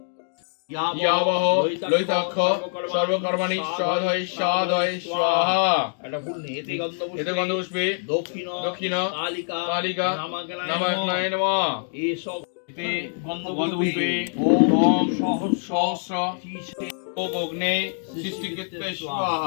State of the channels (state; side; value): silent; right; digital silence